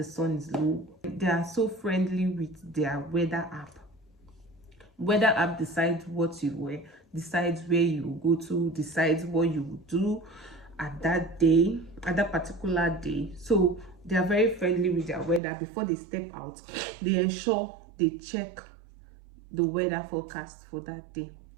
sun is low. They are so friendly with their weather app. Weather app decides what you wear, decides where you go to, decides what you will do at that day, at that particular day. So they are very friendly with their weather. Before they step out, they ensure they check the weather forecast for that day.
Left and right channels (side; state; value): left; drops out; at 15.4 s